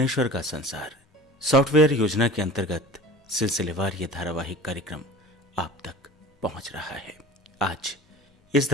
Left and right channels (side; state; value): both; normal; correlation 0.39